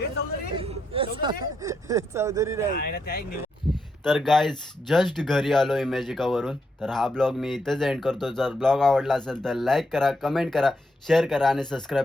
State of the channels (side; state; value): both; normal; correlation 0.80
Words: चौधरी नाही. तर गाईज जस्ट घरी आलो इमॅजिकावरून. तर हा ब्लॉग मी इथेच एंड करतो. जर ब्लॉग आवडला असेल तर लाईक करा, कमेंट करा, शेअर करा आणि सबस्क्राईब